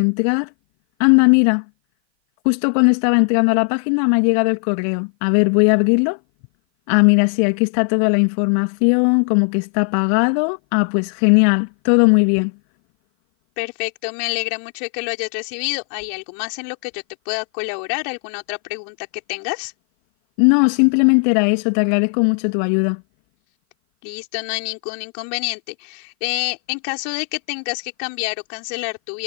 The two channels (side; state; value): right; silent; 57 dB below the other